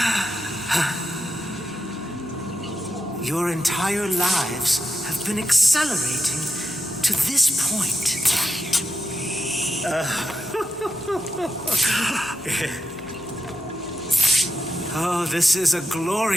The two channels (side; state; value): both; normal; correlation 0.88